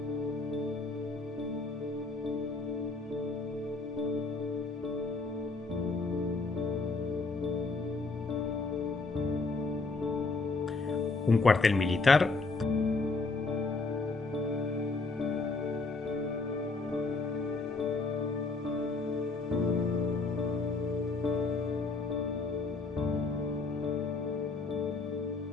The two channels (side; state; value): right; quieter; 3.7 dB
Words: un cuartel militar